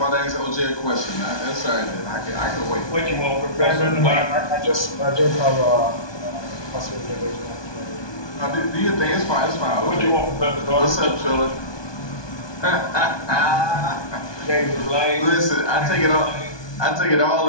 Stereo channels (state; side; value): late; right; 1.2 ms